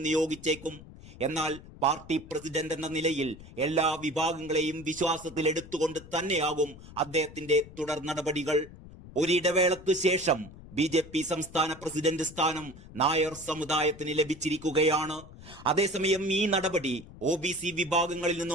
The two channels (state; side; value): noise; left; rumble, 18 dB below the sound